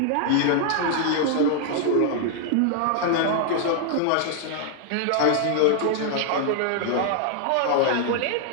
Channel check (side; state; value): both; different; correlation 0.00